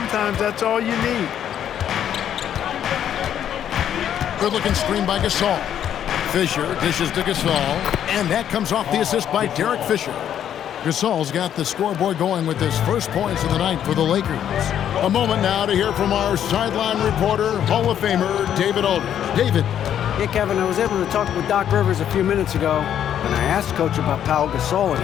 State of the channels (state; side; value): quieter; right; 9.9 dB